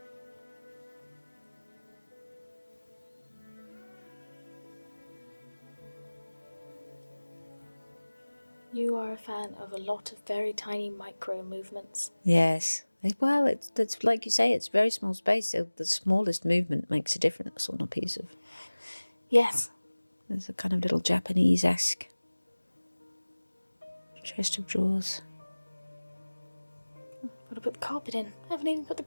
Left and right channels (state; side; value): inverted; both; correlation -1.00